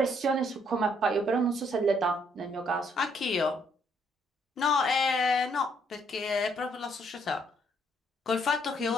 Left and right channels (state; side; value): normal; both; correlation 0.69